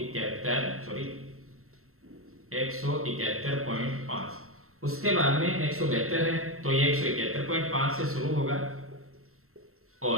उसके बाद में 172 है तो ये 171.5 से शुरू होगा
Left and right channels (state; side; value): late; left; 0.63 ms